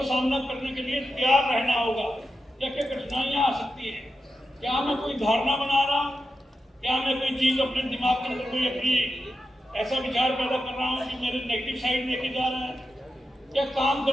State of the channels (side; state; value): both; normal; correlation 0.90